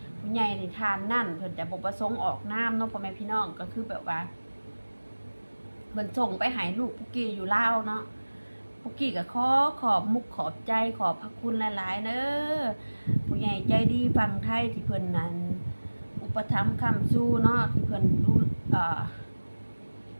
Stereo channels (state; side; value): inverted; both; correlation -1.00